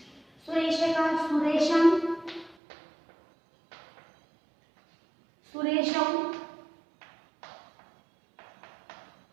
सुरेश का सुरेशम, सुरेशौ,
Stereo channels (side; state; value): left; drops out; at 2.6 s